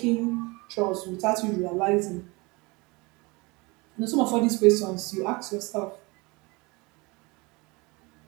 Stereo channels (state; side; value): quieter; left; 25.9 dB